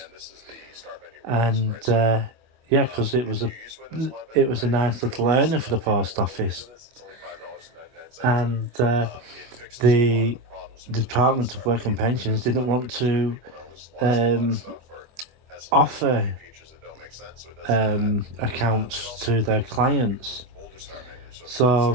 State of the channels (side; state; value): left; late; 25 ms